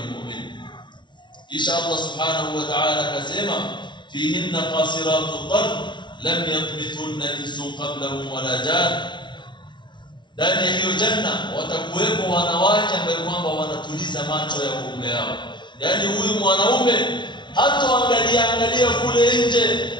almu'min. Kisha Allah subhanahu wa ta'ala akasema fihinna qasiratu tarf lam yatmithunna insun qablahum wala jan. Ndani ya hiyo janna watakuwepo wanawake ambao kwamba wanatuliza macho ya waume wao. Yaani huyu mwanaume hatoangalia kule nje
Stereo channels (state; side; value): late; right; 0.23 ms